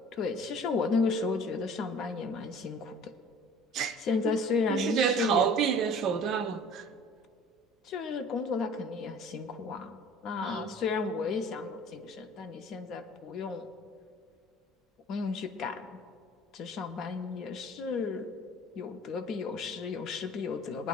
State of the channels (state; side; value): normal; both; correlation 0.47